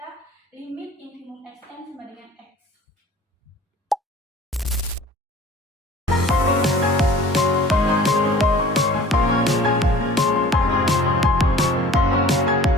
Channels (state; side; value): normal; both; correlation 0.46